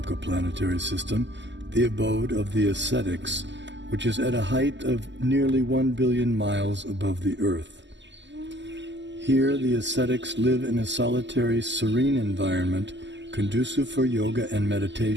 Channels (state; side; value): late; left; 0.53 ms